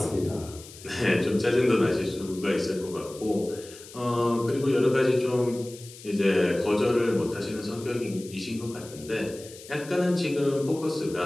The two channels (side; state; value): left; noise; hiss, 18 dB below the sound